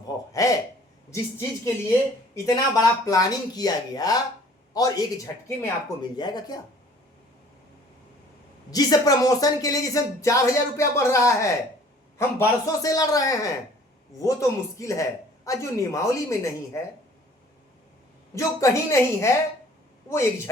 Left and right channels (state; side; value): normal; both; correlation 0.53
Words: है जिस चीज के लिए इतना बड़ा प्लानिंग किया गया और एक झटके में आपको मिल जाएगा? क्या जिस प्रमोशन के लिए जिसे 4,000 रुपया बढ़ रहा है, हम बरसों से लड़ रहे हैं, वो तो मुश्किल है। और जो नियमावली में नहीं है, जो कहीं नहीं है, वो एक